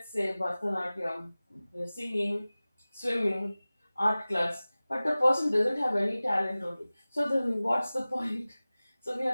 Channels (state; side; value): inverted; both; correlation -0.98